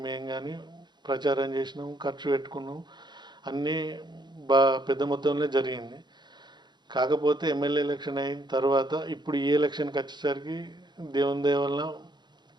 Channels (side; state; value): left; late; 0.21 ms